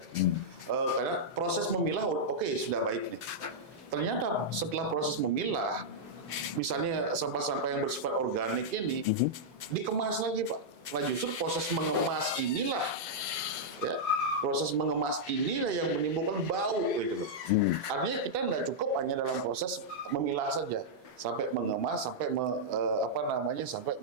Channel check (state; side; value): normal; both; correlation -0.07